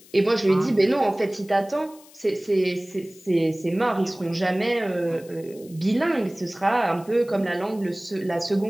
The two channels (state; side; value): noise; left; hiss, 24 dB below the sound